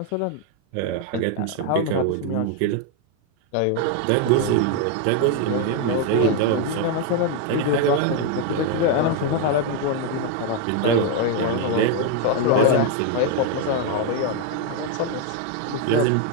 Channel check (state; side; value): different; both; correlation 0.01